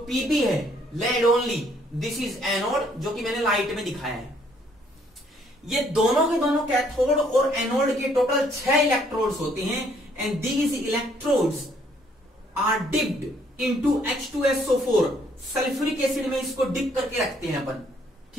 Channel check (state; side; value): normal; both; correlation 0.65